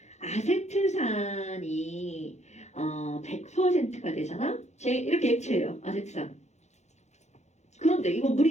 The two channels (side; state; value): right; late; 0.33 ms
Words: 아세트산이 100%가 되잖아? 이렇게 액체예요. 아세트산. 그런데 이건